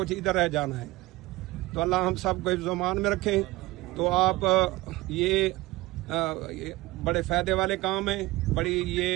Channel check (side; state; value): left; quieter; 20.2 dB